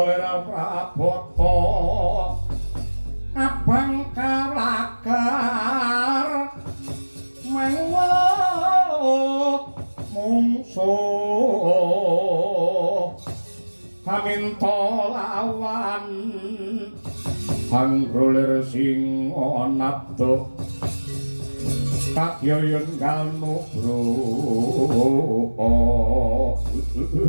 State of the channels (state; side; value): inverted; both; correlation -1.00